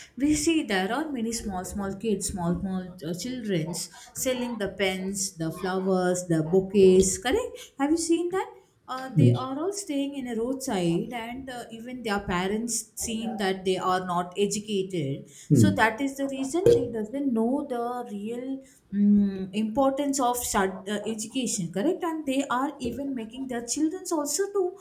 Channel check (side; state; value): both; identical; correlation 1.00